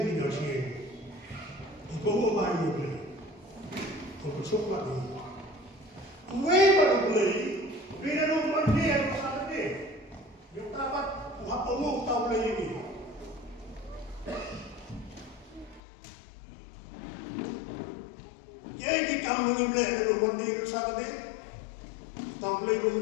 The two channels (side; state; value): right; drops out; at 15.8 s